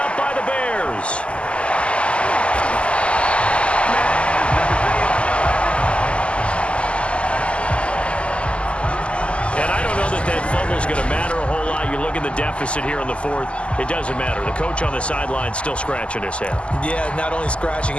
by the Bears. And I don't know that fumble is going to matter a whole lot. You look at the deficit here in the 4th. It doesn't matter. The coach on the sideline still scratching his head. Yeah, not only scratching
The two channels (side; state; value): right; late; 0.055 ms